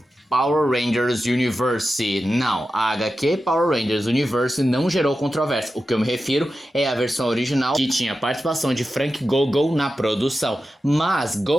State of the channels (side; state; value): both; normal; correlation 0.92